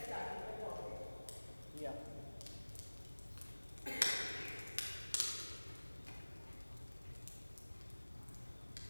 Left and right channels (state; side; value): inverted; both; correlation -1.00